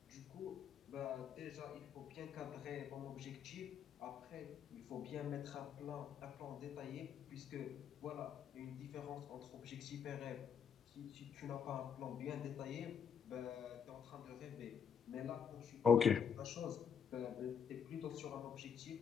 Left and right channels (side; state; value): right; quieter; 7.3 dB